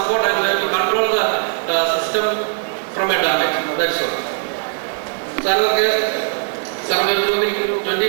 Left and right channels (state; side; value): silent; left; 66 dB below the other